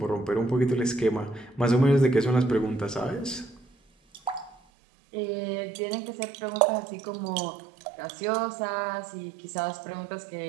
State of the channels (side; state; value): left; drops out; at 4.5 s